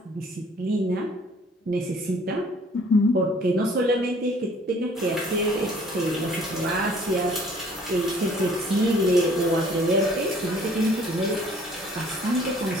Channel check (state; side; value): normal; both; correlation 0.56